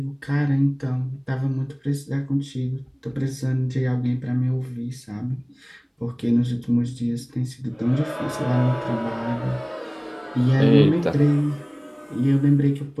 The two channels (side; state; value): both; identical; correlation 1.00